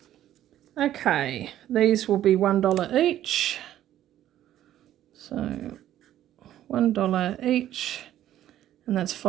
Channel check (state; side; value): quieter; left; 12.3 dB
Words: Okay, these will be $1 each. So $1 each, and that's